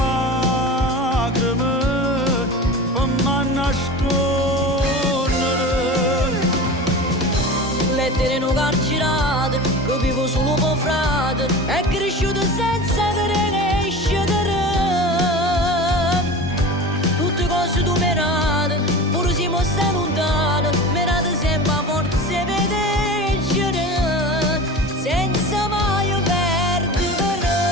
per me nascondere. Lettere non carcerate, che vivo solo per frate, è cresciuto senza crescere. Tutte cose tu merate, pure si mostra lontano, merate sempre a forza vedere, senza mai perdere.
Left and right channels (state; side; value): normal; both; correlation 0.33